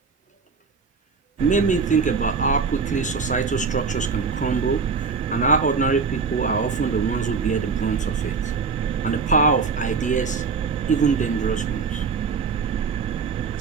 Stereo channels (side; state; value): left; quieter; 5.0 dB